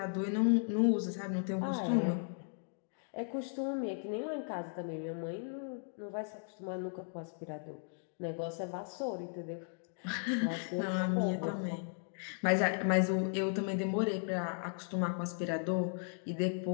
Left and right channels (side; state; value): right; silent; digital silence